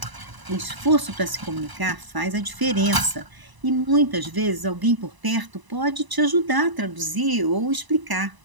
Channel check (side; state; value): left; late; 1.0 ms